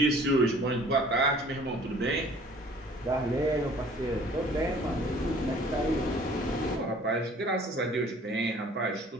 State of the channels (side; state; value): both; normal; correlation 0.52